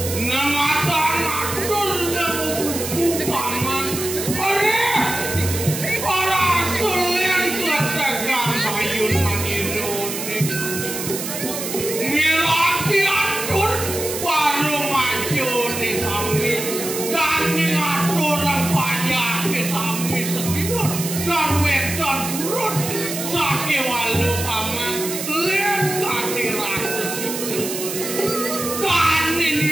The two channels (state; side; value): noise; right; hiss, 5 dB below the sound